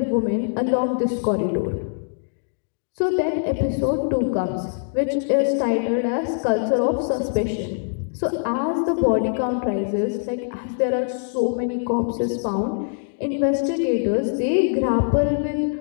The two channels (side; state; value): right; silent; digital silence